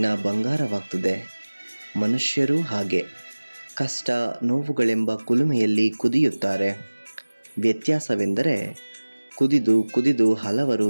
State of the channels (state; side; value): inverted; both; correlation -1.00